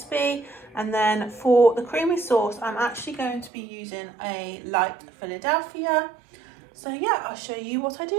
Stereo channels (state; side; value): drops out; left; at 3.5 s